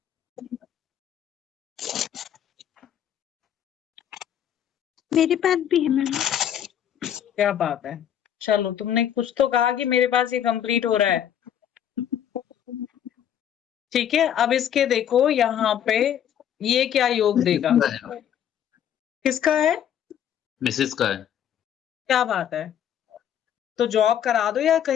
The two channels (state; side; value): quieter; right; 9.7 dB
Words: मेरे पास भी है मैम। क्या बात है। चलो, तुमने कुछ तो कहा कि मेरे पास ये कंप्लीट हो रहा है। ठीक है, अब इसके देखो यहाँ पे ये क्या योग देगा, किसका है? मिसेस का है। क्या बात है। तो जॉब करा दो या